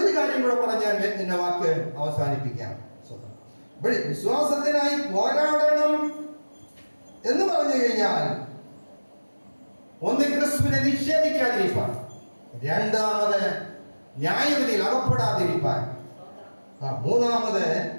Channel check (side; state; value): both; inverted; correlation -1.00